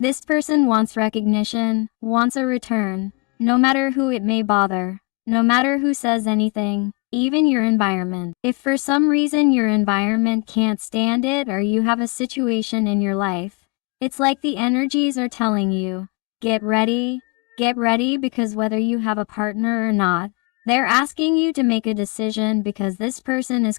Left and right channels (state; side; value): quieter; right; 30.4 dB